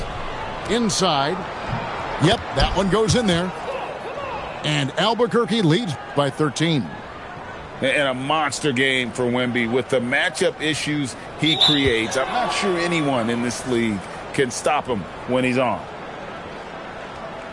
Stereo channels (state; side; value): identical; both; correlation 1.00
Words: Inside. Yep, that one goes in there. And Albuquerque leads by 13. And a monster game for Wemby with the matchup issues he creates. I'm not sure anyone in this league can stop him when he's on.